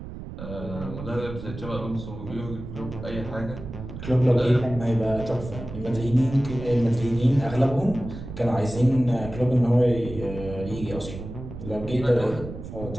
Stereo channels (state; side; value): noise; right; rumble, 10 dB below the sound